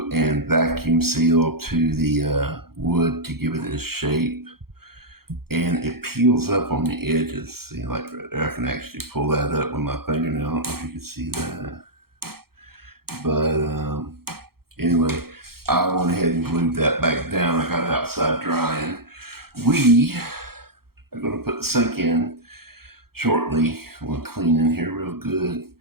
and vacuum seal to the wood to give it its shape, and it peels up on the edges. See, like right there, I can actually pull that up with my fingernail. I don't know if you can see that, but anyway, I went ahead and glued that back down. I got it outside drying. We are going to put the sink in shortly. I'm going to clean in here real good.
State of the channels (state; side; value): late; left; 0.94 ms